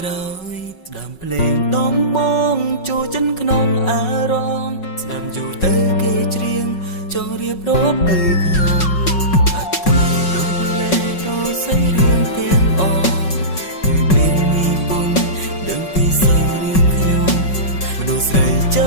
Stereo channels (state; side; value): late; right; 5.4 ms